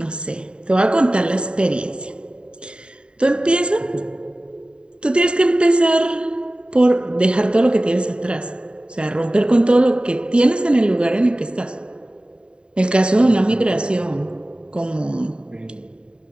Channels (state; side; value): late; left; 0.051 ms